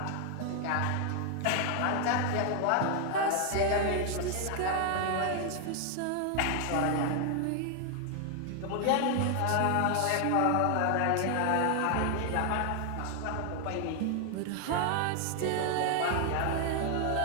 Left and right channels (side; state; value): both; different; correlation 0.00